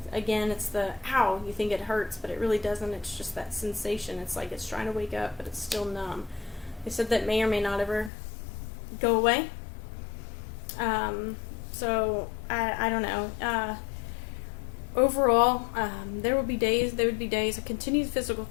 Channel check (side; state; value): right; drops out; at 8.1 s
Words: Again, it's the ow, you think it hurts, but it really doesn't. It's just that sensation. It's like it's trying to wake up, but it's still numb. They said that may or may not ever go away. So I don't know. Overall, there would be days I continued physical